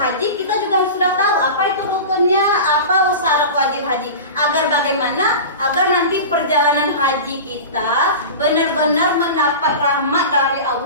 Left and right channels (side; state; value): both; inverted; correlation -0.31